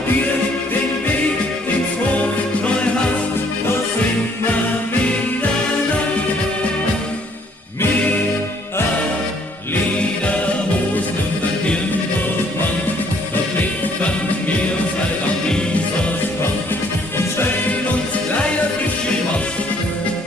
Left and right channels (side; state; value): both; normal; correlation 0.64